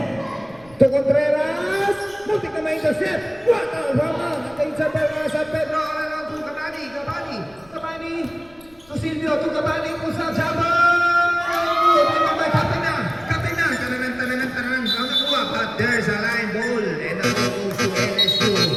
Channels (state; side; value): noise; left; rumble, 27 dB below the sound